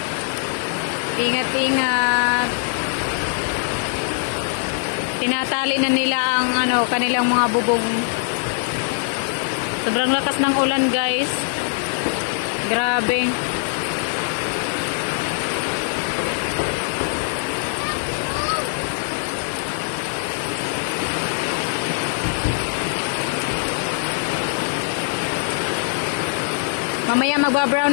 Ingat-ingat. Tinatali na nila ang kanilang mga bubong. Sobrang lakas ng ulan guys. Grabe. Mamaya magba-brown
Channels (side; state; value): right; silent; digital silence